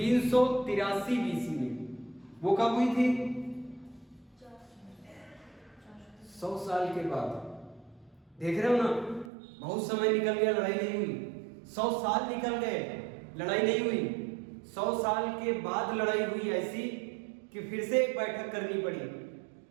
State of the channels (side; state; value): left; drops out; at 9.3 s